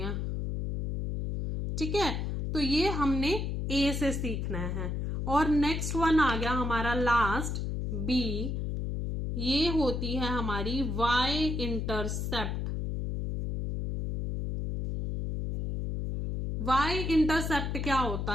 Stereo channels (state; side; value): noise; left; hum, 2 dB below the sound